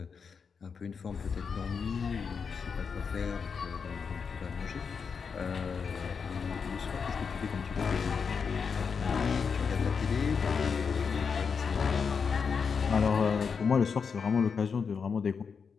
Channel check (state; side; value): quieter; right; 5.9 dB